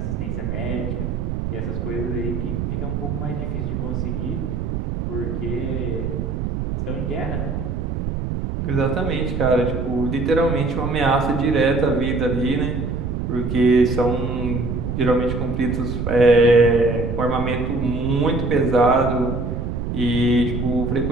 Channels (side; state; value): right; noise; rumble, 3 dB below the sound